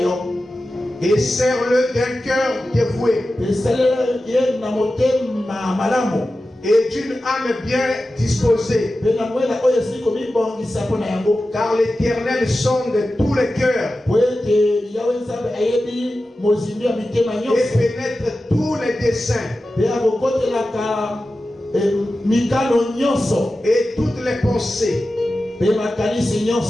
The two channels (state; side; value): normal; both; correlation 0.93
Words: et sers-le d'un cœur dévoué et d'une âme bien disposée, car l'Éternel sonde tous les cœurs et pénètre tous les desseins et toutes les pensées.